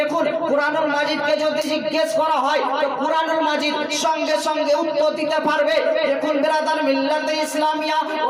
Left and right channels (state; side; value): identical; both; correlation 1.00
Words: কুরআনুল মাজিদকে যদি জিজ্ঞেস করা হয়, তো কুরআনুল মাজিদ সঙ্গে সঙ্গে উত্তর দিতে পারবে। দেখুন বিরাদার মিল্লাতে ইসলামিয়া,